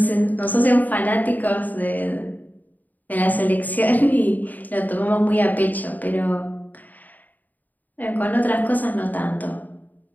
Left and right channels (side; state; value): right; late; 0.083 ms